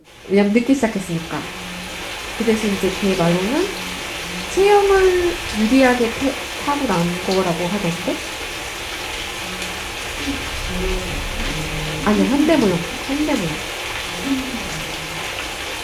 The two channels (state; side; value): identical; both; correlation 1.00